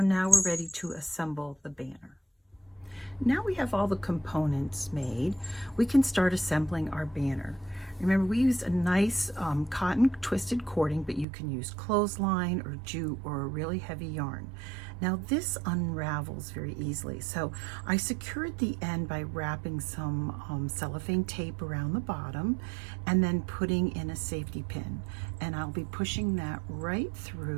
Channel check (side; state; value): left; drops out; at 11.2 s